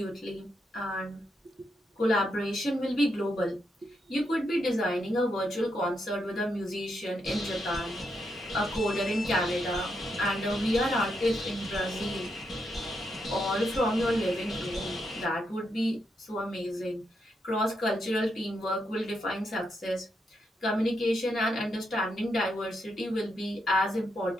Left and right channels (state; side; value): normal; both; correlation 0.81